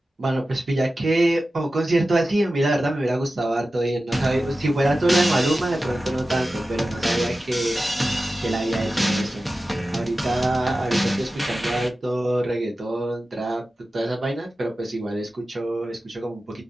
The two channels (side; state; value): both; normal; correlation 0.94